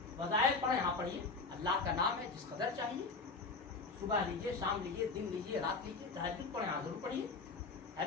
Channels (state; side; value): quieter; right; 4.1 dB